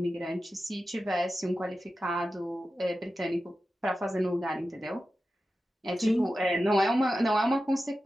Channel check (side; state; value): both; normal; correlation 0.93